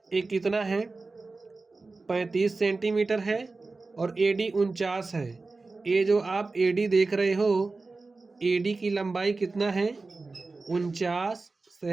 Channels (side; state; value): left; quieter; 3.7 dB